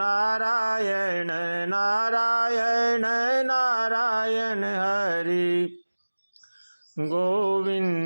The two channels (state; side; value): inverted; both; correlation -1.00